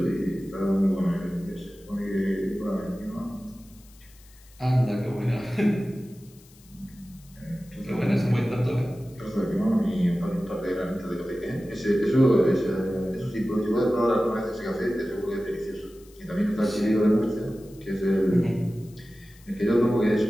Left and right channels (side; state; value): left; noise; hiss, 26 dB below the sound